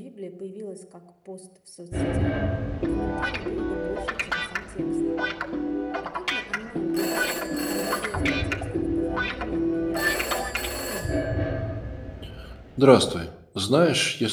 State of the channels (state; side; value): identical; both; correlation 1.00